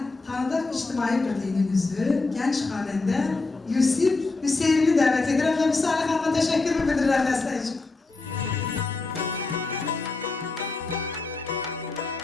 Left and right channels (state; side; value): quieter; right; 3.7 dB